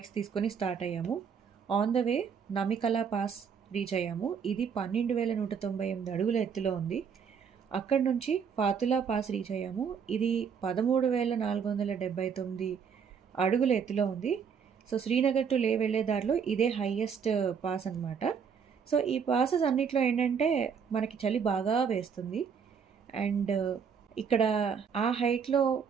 తీసుకొని స్టార్ట్ అయ్యాము. On the way Namikala pass reach అయ్యాము. ఇది 12,198 అడుగుల ఎత్తులో ఉంది. అక్కడి నుంచి ఫాతులా పాస్ రీచ్ అయ్యాము. ఇది 13,479 అడుగుల ఎత్తులో ఉంది. సో శ్రీనగర్ టు లే వెళ్ళే దారిలో ఇదే హైయెస్ట్ పాస్ అనమాట. సో ఈ పాసెస్ అన్నిట్లో ఏంటంటే మనకి చలి బాగా వేస్తుంది. అండ్ ఇక్కడ ఆ హైట్లో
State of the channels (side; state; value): left; quieter; 6.8 dB